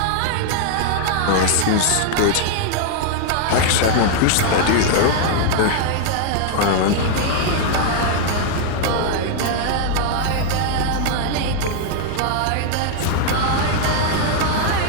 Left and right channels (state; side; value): different; both; correlation 0.00